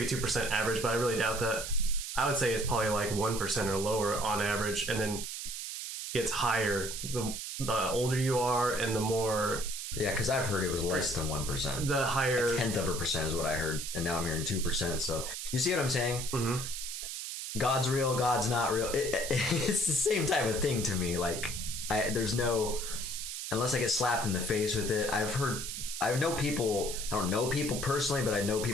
2% average, but I really doubt that. I would say it's probably like 1% or lower on average, and then gets higher the older you are and the more. Yeah, because I've heard it was less than 1%. The higher, a tenth of a percent is what I heard, and now I'm hearing 2%. So you see what I'm saying? Mm-hmm. God's real, God's not real. It's the same type of thing to me. Like there's no, unless I get slapped in the face with it. I know people, I don't know people personally, but I know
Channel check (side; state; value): right; noise; hiss, 6 dB below the sound